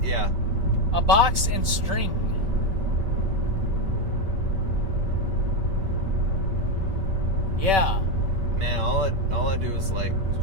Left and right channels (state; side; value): late; left; 5.2 ms